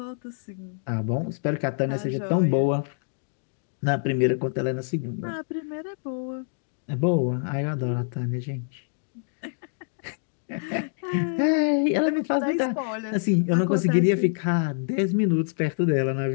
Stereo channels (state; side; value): silent; right; digital silence